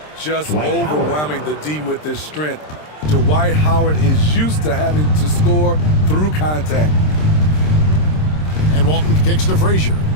Just overwhelming the D with his strength. Dwight Howard is used to having to score through contact. And Walton kicks to Frazier.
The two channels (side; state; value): right; late; 26 ms